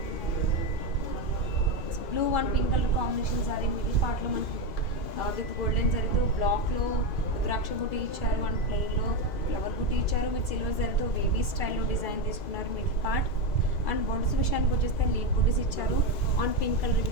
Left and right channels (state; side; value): late; right; 2.5 ms